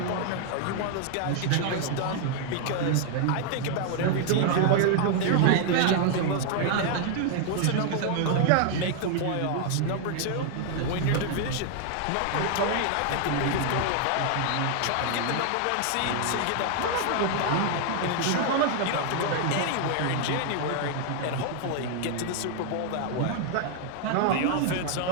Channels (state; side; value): different; both; correlation 0.00